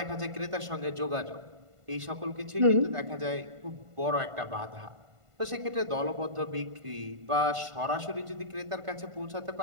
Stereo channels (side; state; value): left; late; 1.5 ms